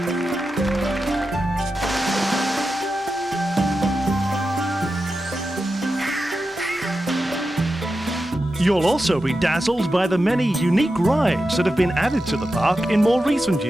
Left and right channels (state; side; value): normal; both; correlation 0.90